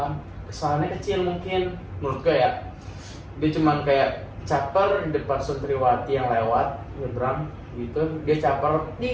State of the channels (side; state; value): both; identical; correlation 1.00